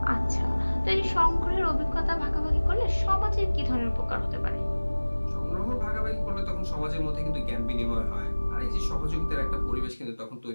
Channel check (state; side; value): inverted; both; correlation -1.00